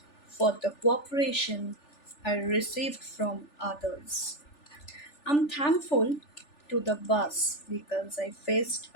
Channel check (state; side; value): late; right; 3.4 ms